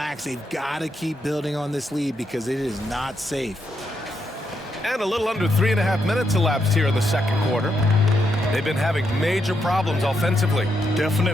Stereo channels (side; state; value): both; normal; correlation 0.80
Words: They've got to keep building on this lead because it is not safe. And a little under 3.5 minutes elapsed here in the second quarter. They've been having major problems offensively.